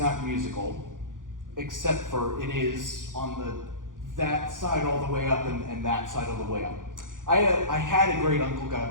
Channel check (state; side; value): late; left; 0.88 ms